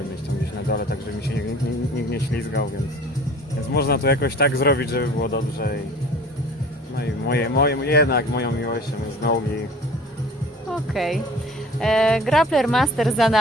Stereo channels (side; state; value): both; normal; correlation 0.45